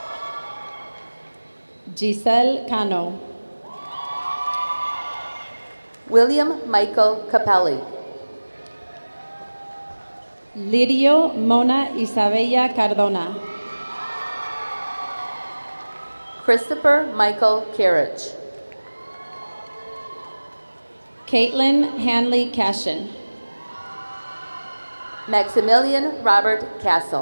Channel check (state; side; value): inverted; both; correlation -1.00